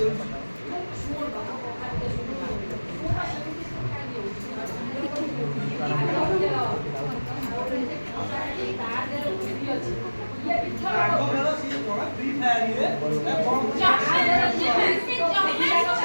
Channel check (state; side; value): inverted; both; correlation -1.00